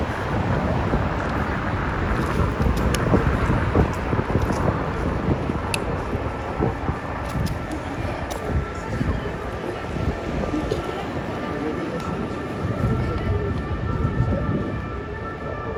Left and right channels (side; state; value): both; identical; correlation 1.00